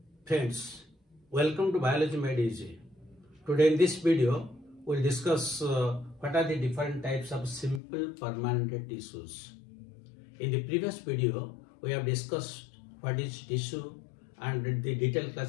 Friends, welcome to Biology Made Easy. Today in this video, we'll discuss what are the different types of simple permanent tissues. In the previous video, we have discussed what is tissue and the detailed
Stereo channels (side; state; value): right; drops out; at 7.8 s